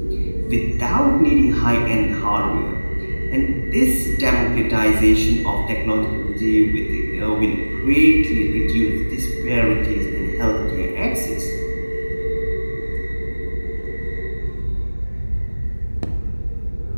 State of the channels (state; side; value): inverted; both; correlation -1.00